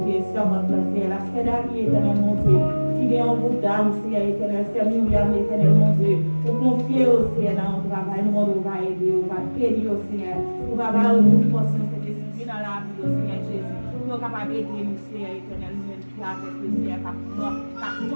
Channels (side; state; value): both; inverted; correlation -1.00